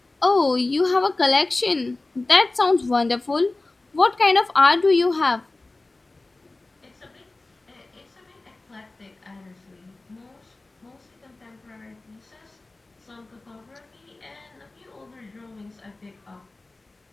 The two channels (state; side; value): quieter; right; 3.1 dB